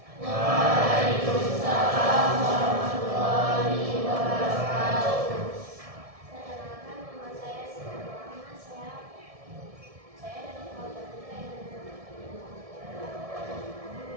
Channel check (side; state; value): left; late; 1.7 ms